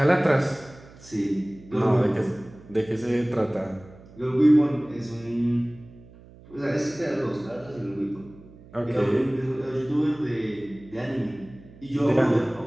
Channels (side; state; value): right; noise; hum, 22 dB below the sound